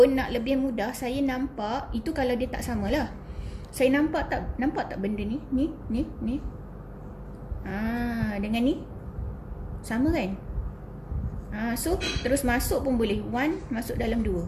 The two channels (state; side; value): identical; both; correlation 1.00